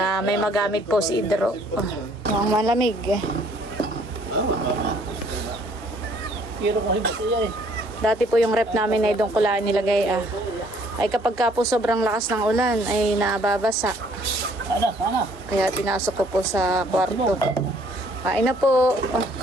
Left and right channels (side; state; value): both; normal; correlation 0.61